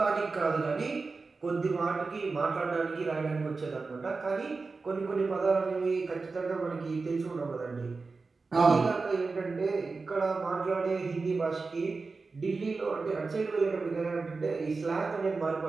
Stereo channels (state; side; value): quieter; left; 4.1 dB